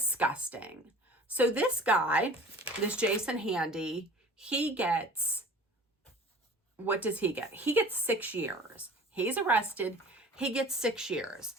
So this guy, this Jason Handy, he gets, what does he get? He gets 6 years. He's arrested. He gets 6 years.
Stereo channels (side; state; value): both; normal; correlation 0.44